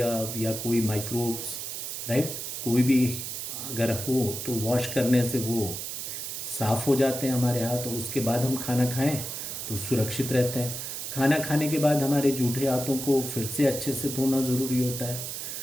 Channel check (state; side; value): noise; right; hiss, 6 dB below the sound